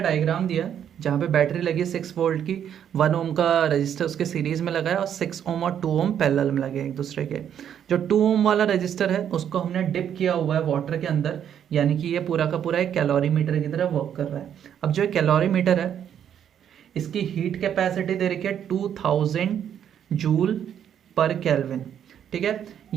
दिया जहाँ पे battery लगी है 6 वोल्ट की, 1 ओम का रजिस्टर उसके सीरीज में लगा है और 6 ओम और 2 ओम पैरेलल में लगे एक दूसरे के। जो 2 ओम वाला रजिस्टर है उसको हमने डिप किया हुआ है वाटर के अंदर, यानी कि ये पूरा का पूरा एक कैलोरीमीटर की तरह वर्क कर रहा है। अब जो कैलोरीमीटर है इसकी हीट कैपेसिटी दे रखी है 2000 जूल पर केल्विन, ठीक है।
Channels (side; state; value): left; quieter; 9.2 dB